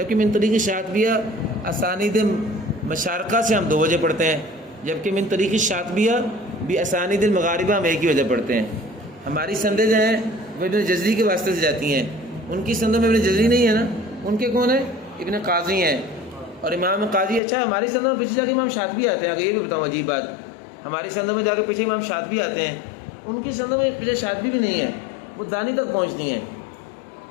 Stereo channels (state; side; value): drops out; right; at 17.4 s